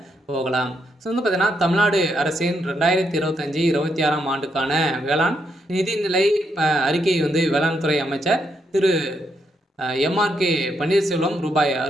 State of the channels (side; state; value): both; normal; correlation 0.78